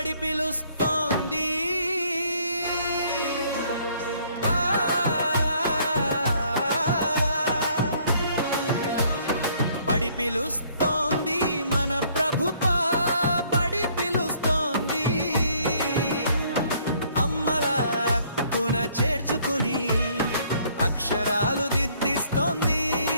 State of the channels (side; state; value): both; inverted; correlation -0.62